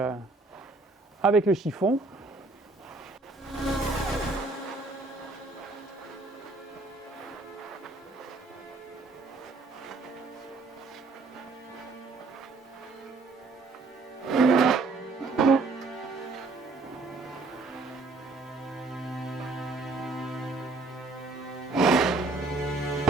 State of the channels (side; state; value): left; quieter; 3.4 dB